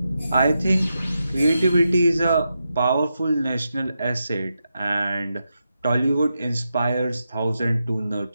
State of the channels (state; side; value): inverted; both; correlation -0.87